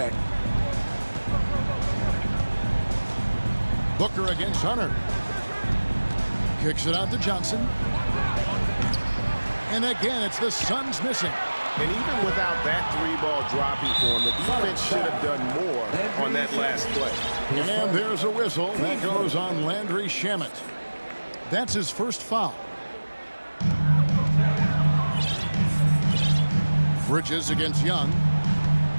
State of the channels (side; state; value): both; inverted; correlation -1.00